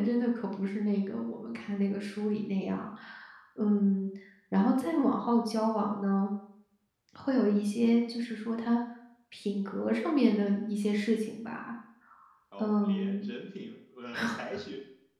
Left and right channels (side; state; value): both; identical; correlation 1.00